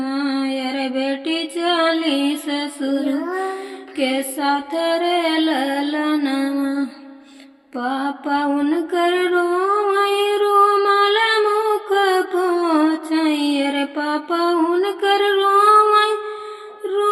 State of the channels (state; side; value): identical; both; correlation 1.00